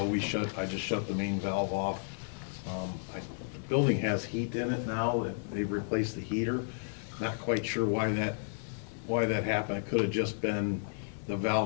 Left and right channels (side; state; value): right; silent; 56 dB below the other